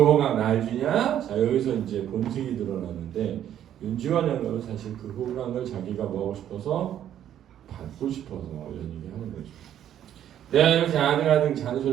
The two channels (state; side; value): quieter; left; 10.7 dB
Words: 날 주냐? 자 여기서 이제 본색이 드러나는데 윤지원 영감은 사실 그 호강을 자기가 뭐하고 싶어서 받고 싶어서 이런 얘기 하는 거죠. 내가 이렇게 아등아등